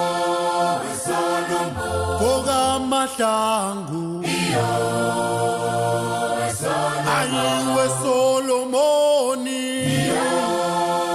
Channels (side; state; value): both; identical; correlation 1.00